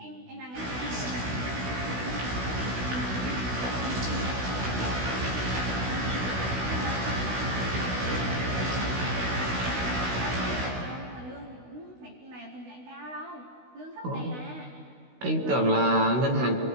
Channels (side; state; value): left; late; 16 ms